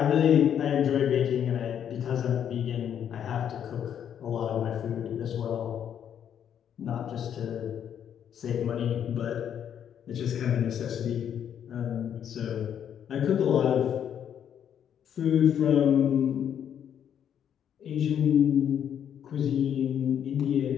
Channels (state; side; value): quieter; right; 9.1 dB